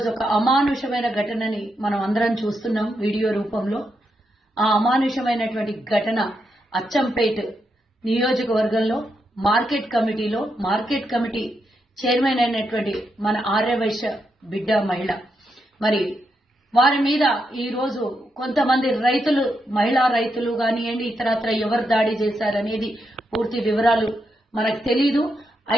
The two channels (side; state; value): both; normal; correlation 0.83